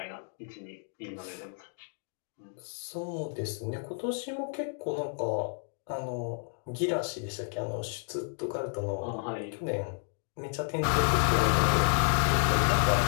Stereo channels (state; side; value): silent; right; 57 dB below the other